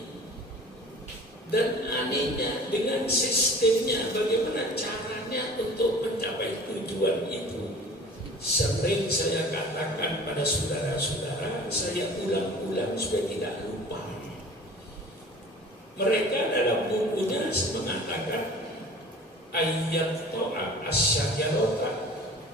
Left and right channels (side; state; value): both; normal; correlation 0.43